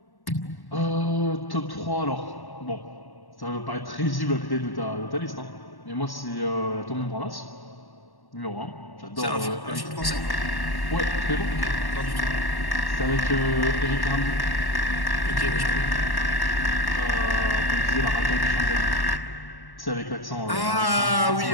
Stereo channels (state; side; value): late; right; 1.1 ms